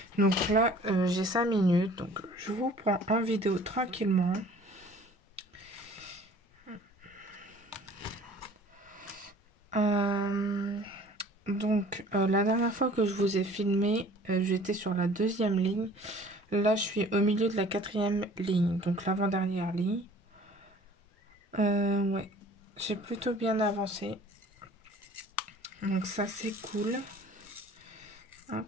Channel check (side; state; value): both; normal; correlation 0.50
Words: Donc là, j'ai 5 minutes, donc je vous prends en vidéo tranquillement. La dernière fois que je vous ai filmé, j'étais sur la deuxième ligne. Là, je suis au milieu de la quatrième ligne, donc l'avant-dernière ligne. Ouais, j'ai plutôt bien avancé. Donc ça, c'est cool. Hop.